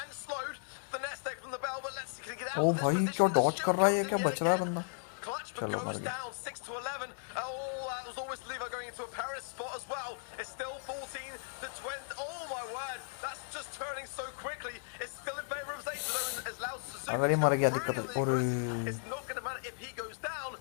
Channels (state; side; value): silent; right; digital silence